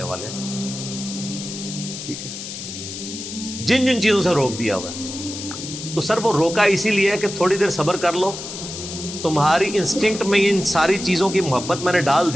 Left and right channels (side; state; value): left; noise; hiss, 9 dB below the sound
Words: والے ہیں. ٹھیک ہے, جن جن چیزوں سے روک دیا ہوا ہے تو سر وہ روکا اسی لیے ہے کہ تھوڑی دیر صبر کر لو, تمہاری انسٹنکٹ میں ان ساری چیزوں کی محبت میں نے ڈال